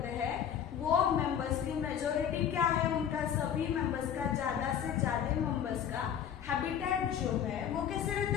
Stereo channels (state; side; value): quieter; right; 9.0 dB